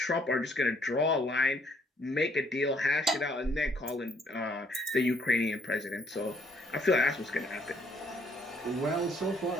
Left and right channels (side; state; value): both; normal; correlation 0.66